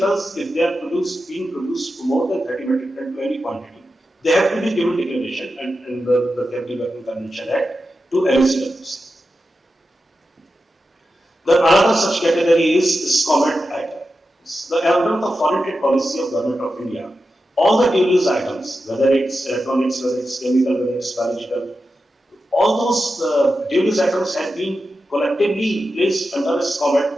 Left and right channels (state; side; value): normal; both; correlation 0.91